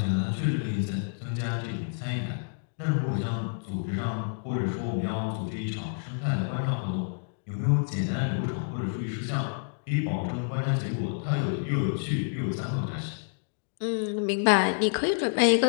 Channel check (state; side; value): silent; right; digital silence